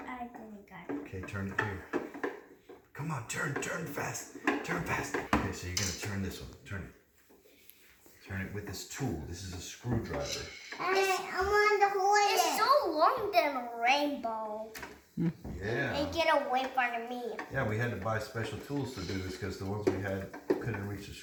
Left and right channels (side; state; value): both; identical; correlation 1.00